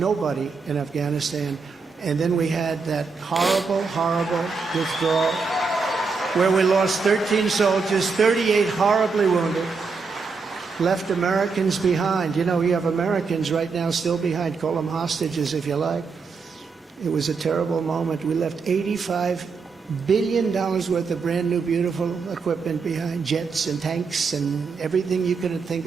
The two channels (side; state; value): left; quieter; 4.8 dB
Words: in Afghanistan. And then we had that horrible, horrible withdrawal where we lost 13 soldiers, 38 horribly wounded, left Americans behind. You know, you have Americans right now still behind. Call them hostages if you like. It was a terrible moment. We left $85 billion worth of brand new, beautiful equipment behind, jets and tanks and everything you could think